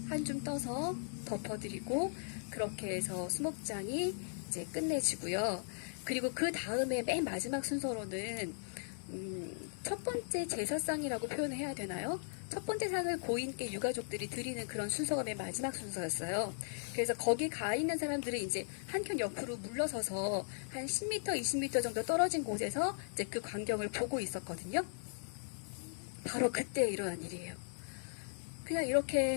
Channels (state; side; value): silent; right; 53 dB below the other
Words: 한 줌 떠서 덮어드리고, 그렇게 해서 수목장이 이제 끝내지고요. 그리고 그 다음에 맨 마지막 순서로는 첫 번째 제사상이라고 표현을 해야 되나요? 첫 번째 상을 고인께 유가족들이 드리는 그런 순서가 맨 마지막 순서였어요. 그래서 거기 가 있는 사람들은 이제 한켠 옆으로 물러서서 한 10m, 20m 정도 떨어진 곳에서 이제 그 광경을 보고 있었거든요. 바로 그때 일어난 일이에요. 그냥